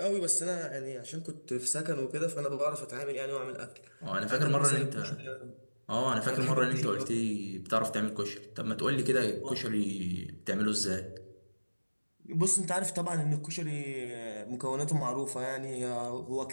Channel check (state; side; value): inverted; both; correlation -1.00